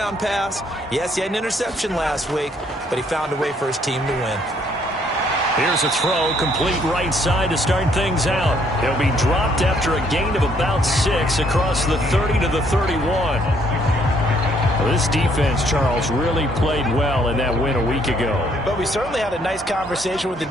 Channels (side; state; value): both; normal; correlation 0.66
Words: pass. Yes, he had an interception last week, but he found a way for his team to win. Here's a throw, complete right side to start things out. He'll be dropped after a gain of about 6 across the 30 to the 31. Well, this defense, Charles, really played well in that win a week ago. But we certainly had a nice conversation with the